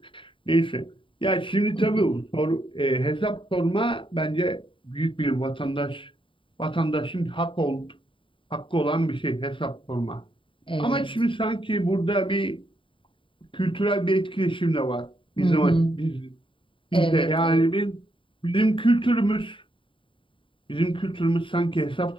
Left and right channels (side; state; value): right; late; 0.25 ms